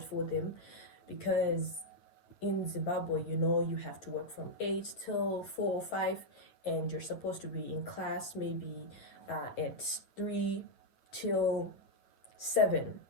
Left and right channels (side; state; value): right; late; 9.2 ms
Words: for them because in Zimbabwe, you have to work from 8 till 4 or 5, and you're supposed to be in class maybe at 3 till 7